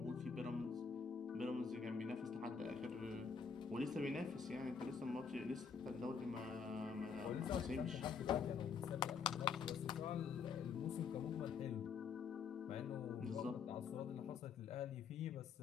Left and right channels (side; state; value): right; quieter; 5.9 dB